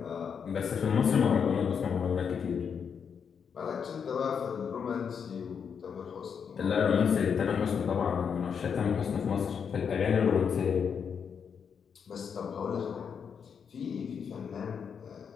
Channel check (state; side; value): quieter; right; 6.9 dB